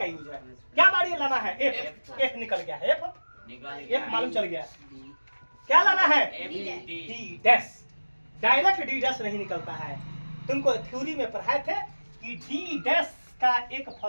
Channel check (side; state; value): both; inverted; correlation -1.00